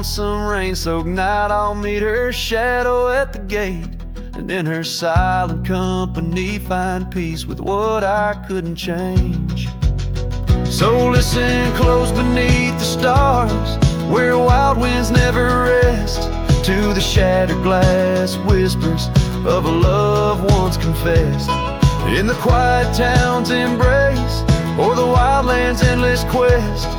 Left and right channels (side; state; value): both; identical; correlation 1.00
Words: some rain-soaked night I'll meet her shadow at the gate, and in her silent company find peace with what I couldn't change. So listen close beneath the stars, where wild winds never rest, to the shattered glass whispers of a love once confessed. In the quiet town's embrace, or the wildland's endless quest,